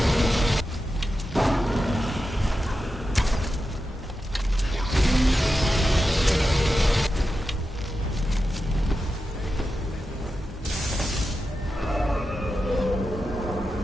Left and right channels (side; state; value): both; normal; correlation 0.90